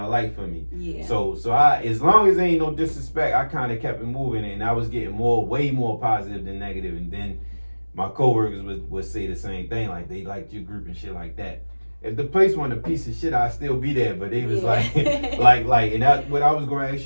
a light for me. Yeah. So I, as long as there ain't no disrespect, I kind of kept it moving, and I was getting way more positive than negative. And then my coworkers would say the same thing, like they liked your group and shit like that. If the place wasn't a piece of shit, I'd still be there. But they was like, and that, what I was going to ask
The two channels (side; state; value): both; inverted; correlation -1.00